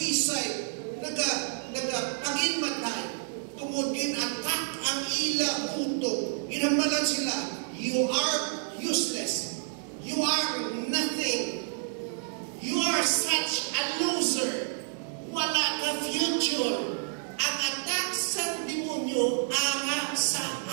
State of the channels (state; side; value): silent; left; 58 dB below the other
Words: nag-paginmatay, tungod gin-attack ang ila utok. Ginambalan sila, you are useless. You are nothing. You are such a loser. Wala ka future. Ang attack sa demonyo ara sa